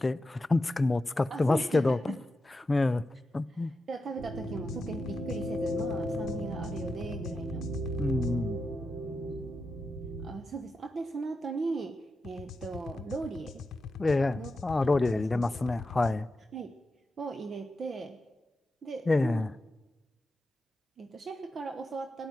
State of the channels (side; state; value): both; normal; correlation 0.89